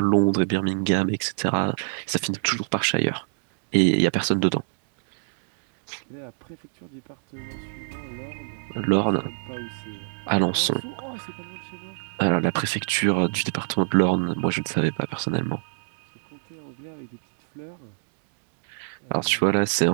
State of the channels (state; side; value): silent; left; digital silence